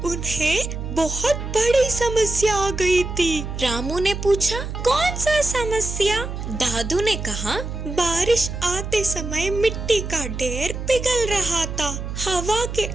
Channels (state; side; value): noise; right; hum, 6 dB below the sound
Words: उन्हें बहुत बड़ी समस्या आ गई थी। रामू ने पूछा, कौन सा समस्या? दादू ने कहा, बारिश आते समय मिट्टी का ढेर पिघल रहा था, हवा के